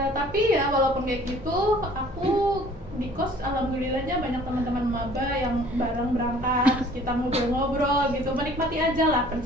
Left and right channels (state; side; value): normal; both; correlation 0.52